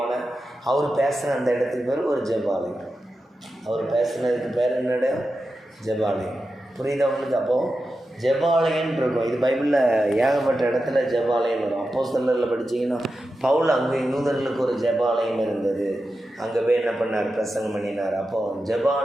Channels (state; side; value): normal; both; correlation 0.91